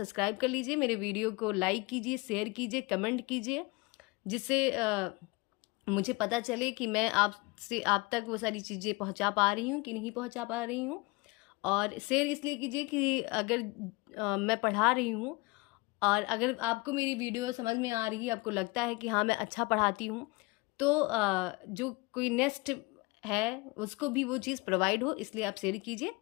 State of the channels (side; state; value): right; quieter; 25.7 dB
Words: कर लीजिए, मेरे वीडियो को लाइक कीजिए, शेयर कीजिए, कमेंट कीजिए, जिससे मुझे पता चले कि मैं आप तक वो सारी चीज़ें पहुंचा पा रही हूँ कि नहीं पहुंचा पा रही हूँ। और शेयर इसलिए कीजिए कि अगर मैं पढ़ा रही हूँ और अगर आपको मेरी वीडियो समझ में आ रही है, आपको लगता है कि हाँ मैं अच्छा पढ़ाती हूँ, तो जो कोई नेक्स्ट है उसको भी वो चीज़ प्रोवाइड हो, इसलिए आप शेयर कीजिए।